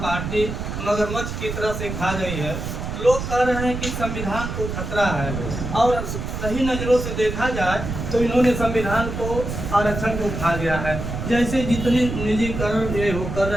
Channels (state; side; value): noise; right; rumble, 5 dB below the sound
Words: पार्टी मगरमच्छ की तरह से खा गई है। लोग कह रहे हैं कि संविधान को खतरा है और सही नज़रों से देखा जाए तो इन्होंने संविधान को, आरक्षण को खा गया है। जैसे जितने निजीकरण ये हो कर